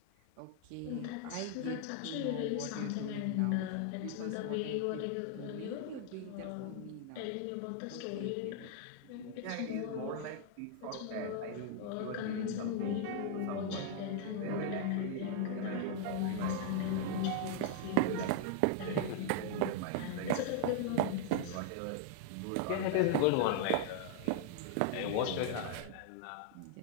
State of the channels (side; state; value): both; different; correlation 0.00